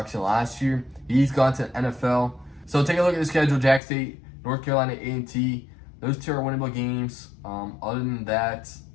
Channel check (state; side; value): drops out; right; at 3.8 s